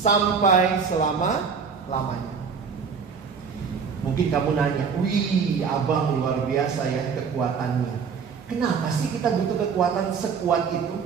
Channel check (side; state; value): left; quieter; 6.0 dB